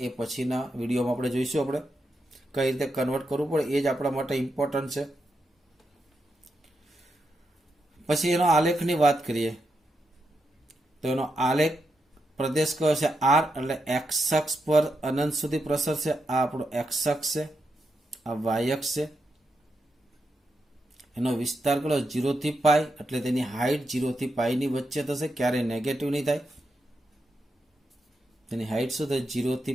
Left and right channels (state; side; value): normal; both; correlation 0.85